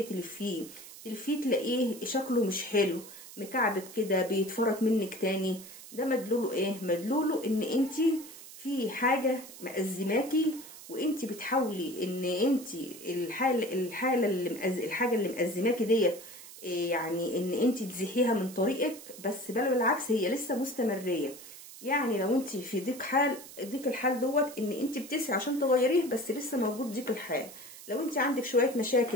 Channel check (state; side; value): noise; right; hiss, 16 dB below the sound